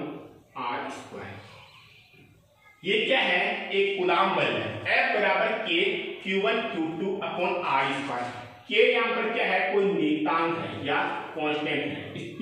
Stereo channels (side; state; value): both; identical; correlation 1.00